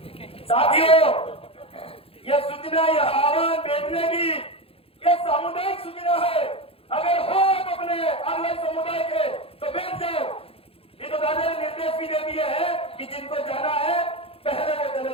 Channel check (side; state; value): right; late; 0.27 ms